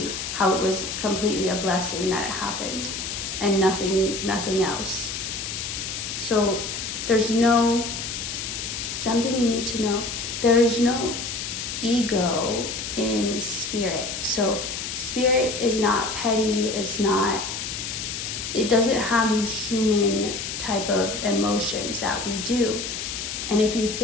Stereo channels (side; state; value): left; noise; hiss, 5 dB below the sound